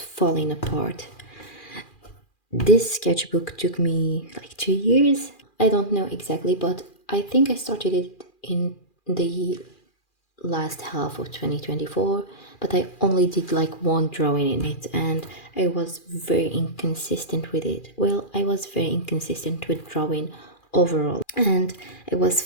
apart. This sketchbook took me like 2 years. I don't know exactly, but I think I started it in the last half of 2024, but I only did like one drawing in it and I was very inconsistent with it. Well, I was very inconsistent with drawing overall, and I was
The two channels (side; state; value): right; late; 2.4 ms